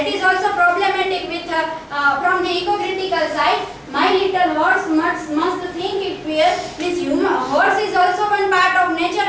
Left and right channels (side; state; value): both; identical; correlation 1.00